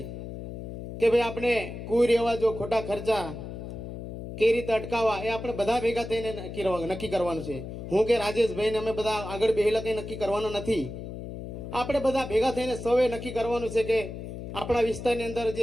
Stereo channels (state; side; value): noise; left; hum, 9 dB below the sound